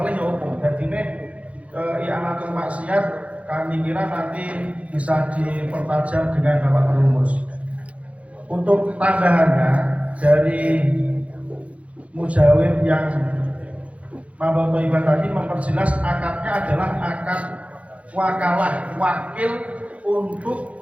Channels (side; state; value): left; late; 0.064 ms